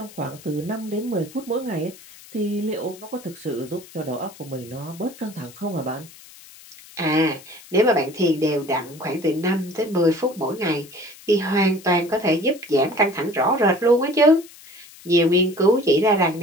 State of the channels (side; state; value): left; noise; hiss, 21 dB below the sound